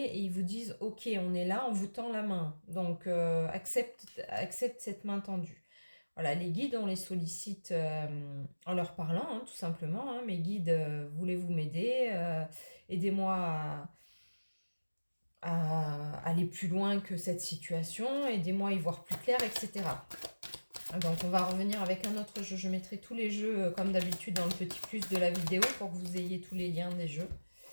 et ils vous disent « Ok, on est là, on vous tend la main. Donc, accepte cette main tendue. » Voilà, les guides, on les sollicite en leur parlant, hein, tout simplement. Hein. Mes guides, voulez-vous m'aider? Aidez-moi à aller plus loin que cette situation, aidez-moi à y voir plus clair, etc. Donc on va revenir avec un autre jeu. Je mettrai tous les jeux comme d'habitude dans le petit plus de la vidéo pour que vous ayez tous les liens des jeux.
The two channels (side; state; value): both; inverted; correlation -1.00